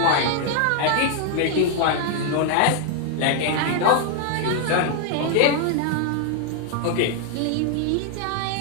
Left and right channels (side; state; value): both; different; correlation 0.00